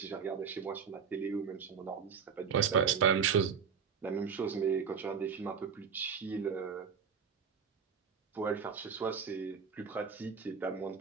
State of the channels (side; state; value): left; quieter; 6.6 dB